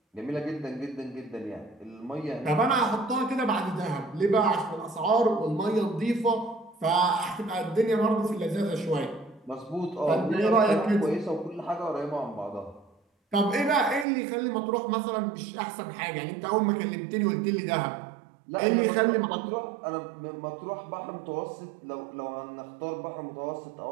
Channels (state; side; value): drops out; left; at 14.1 s